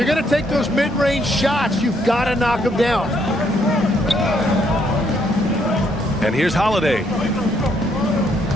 going to take those mid-range shots, you've got to knock them down. And here's Holiday.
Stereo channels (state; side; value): normal; both; correlation 0.72